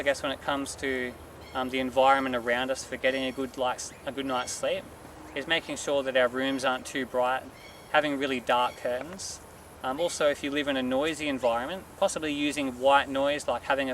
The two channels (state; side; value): identical; both; correlation 1.00